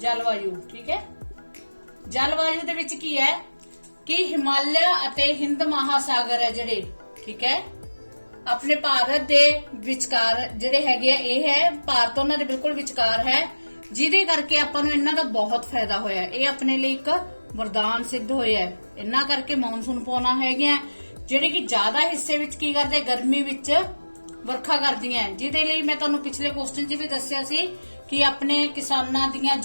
ਠੀਕ ਹੈ, ਜਲਵਾਯੂ ਦੇ ਵਿੱਚ ਕੀ ਹੈ ਕਿ ਹਿਮਾਲਿਆ ਅਤੇ ਹਿੰਦ ਮਹਾਸਾਗਰ ਹੈ ਜਿਹੜੇ, ਠੀਕ ਹੈ, ਆਪਣੇ ਭਾਰਤ ਦੇ ਵਿਚਕਾਰ ਜਿਹੜੇ ਹੈਗੇ ਆ, ਇਹ ਹੈ ਭਾਰਤ ਉਹਨਾਂ ਦੇ ਬਿਲਕੁਲ ਵਿਚਕਾਰ ਹੈ, ਜਿਹਦੇ ਕਰਕੇ ਆਪਾਂ ਨੂੰ ਇਹਨਾਂ ਦਾ ਬਹੁਤ ਫਾਇਦਾ ਹੋਇਆ। ਇਹ ਆਪਣੇ ਲਈ ਇੱਕ ਵਰਦਾਨ ਸਿੱਧ ਹੋਇਆ ਹੈ। ਇਹਨਾਂ ਕਰਕੇ ਮੌਨਸੂਨ ਪੌਣਾ ਹੈਗੀਆਂ ਜਿਹੜੇ ਕਿ ਜ਼ਿਆਦਾ ਹਿੱਸੇ ਵਿੱਚ ਕੀ ਕਰਦੇ, ਗਰਮੀ ਵਿੱਚ ਵਰਖਾ ਕਰਦੀਆਂ, ਜਿਹਦੇ ਲਈ ਮੈਂ ਤੁਹਾਨੂੰ ਪਿਛਲੇ ਕੁਐਸਚਨ 'ਚ ਵੀ ਦੱਸਿਆ ਸੀ ਕਿ ਆਪਣੇ ਕਿਸਾਨਾਂ ਦੀਆਂ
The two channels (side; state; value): both; inverted; correlation -1.00